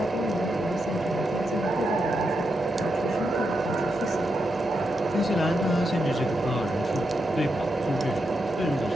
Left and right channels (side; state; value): both; normal; correlation 0.84